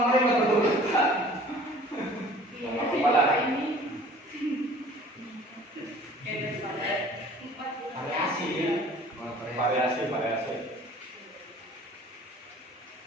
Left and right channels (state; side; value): normal; both; correlation 0.50